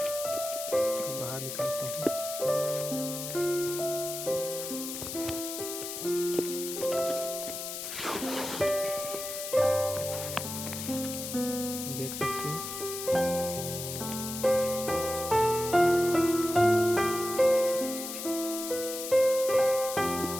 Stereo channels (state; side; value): noise; left; hiss, 6 dB below the sound